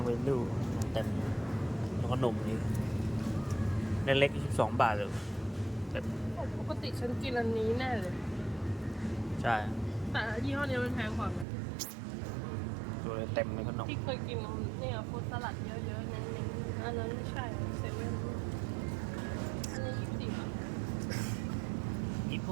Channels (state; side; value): drops out; left; at 11.5 s